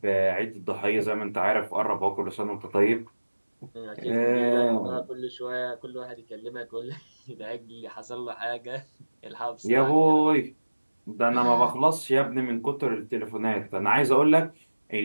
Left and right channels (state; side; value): inverted; both; correlation -1.00